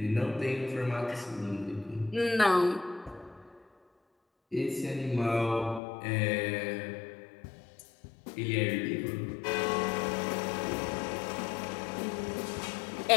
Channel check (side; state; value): right; drops out; at 5.8 s